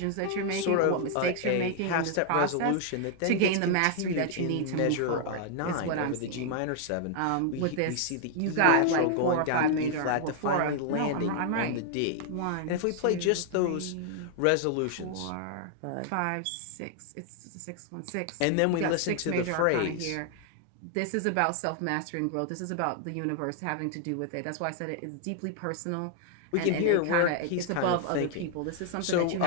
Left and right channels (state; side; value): different; both; correlation 0.00